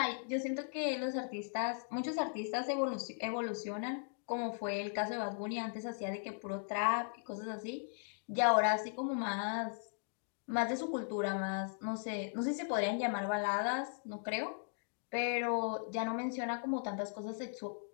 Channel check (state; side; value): silent; right; digital silence